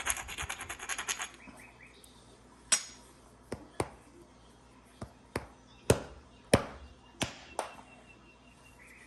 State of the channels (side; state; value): both; identical; correlation 1.00